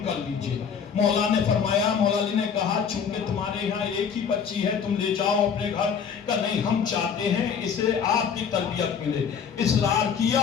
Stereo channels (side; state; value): right; quieter; 7.0 dB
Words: کر لیجئے۔ مولا نے فرمایا، مولا علی نے کہا چونکہ تمہارے یہاں ایک ہی بچی ہے تم لے جاؤ اپنے گھر، کہ نہیں ہم چاہتے ہیں اسے آپ کی تربیت ملے۔ اصرار